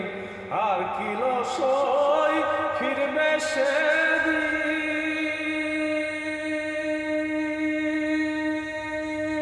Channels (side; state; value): both; identical; correlation 1.00